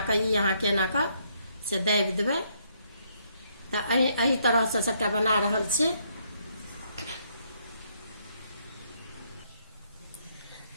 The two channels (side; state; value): both; inverted; correlation -0.72